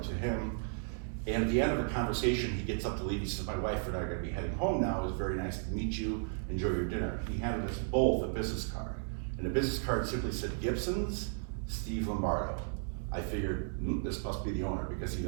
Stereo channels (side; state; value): left; silent; digital silence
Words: to him, and at the end of the conversation, he gets up to leave. He says, my wife and I are gonna be heading home now. It was very nice to meet you, enjoy your dinner. He handed us both a business card, and the business card simply said, Gibson's, Steve Lombardo. I figured, this must be the owner because he